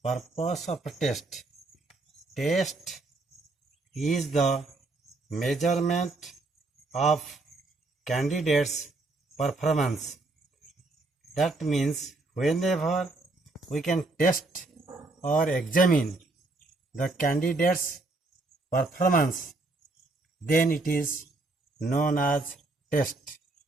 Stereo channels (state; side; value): quieter; left; 3.2 dB